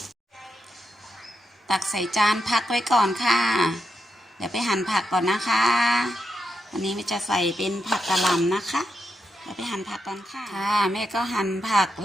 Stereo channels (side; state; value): both; normal; correlation 0.85